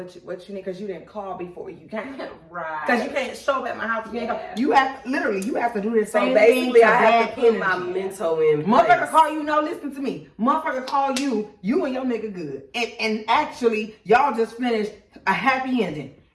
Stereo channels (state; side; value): identical; both; correlation 1.00